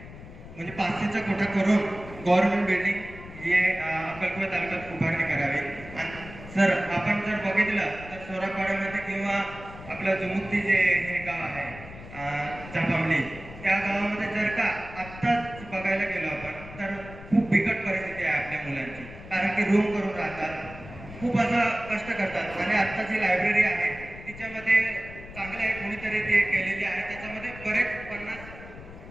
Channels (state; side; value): noise; left; rumble, 15 dB below the sound